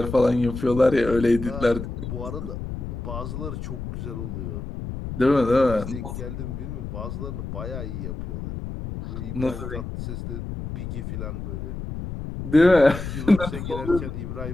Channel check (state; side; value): noise; left; rumble, 7 dB below the sound